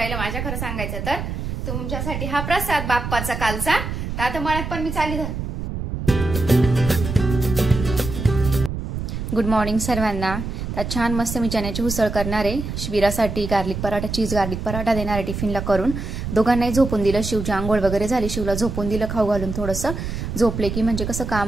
माझ्या, खरं सांगायचं तर. तुमच्यासाठी हा प्रसाद बाप्पाचा कालचा. तर आता मळ्यात पण मी चालली. गुड मॉर्निंग सर्वांना. तर छान मस्त मी चण्याची उसळ करणार आहे. शिबिरासाठी garlic paratha, cheese garlic paratha देणार आहे टिफिनला करून. दोघांनाही झोपून दिलं. शिवची आंघोळ वगैरे झाली, शिवला झोपून दिलं खाऊ घालून. थोडंसं झोपले की म्हणजे कसं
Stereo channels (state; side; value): noise; right; rumble, 5 dB below the sound